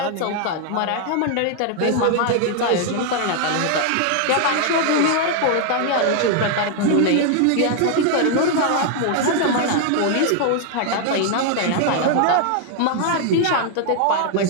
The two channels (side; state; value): both; different; correlation 0.00